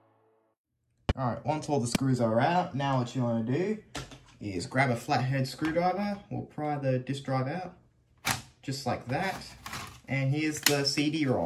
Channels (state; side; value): identical; both; correlation 1.00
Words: Alright, once all the screws are out, now what you want to do is grab a flathead screwdriver. We'll pry the disk drive out, just like that. And here's the